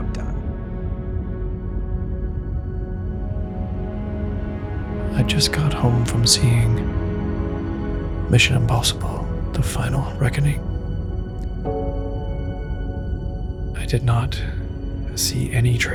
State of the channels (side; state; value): both; identical; correlation 1.00